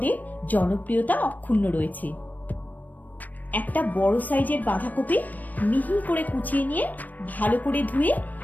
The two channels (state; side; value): late; right; 0.082 ms